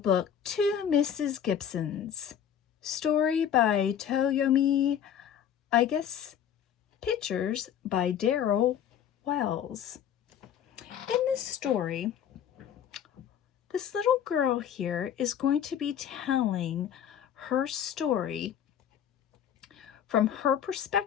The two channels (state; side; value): quieter; right; 9.2 dB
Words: To Mrs. Gibsons, story by Toyomi, I guess, pictures by Daryl Wells. In this story, this little girl here is going to be telling her story from her